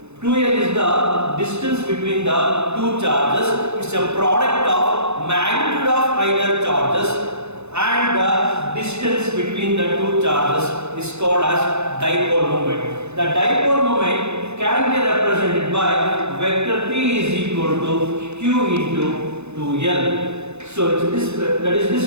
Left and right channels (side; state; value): left; late; 0.81 ms